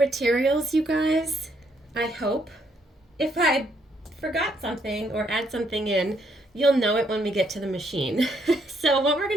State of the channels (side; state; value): both; normal; correlation 0.72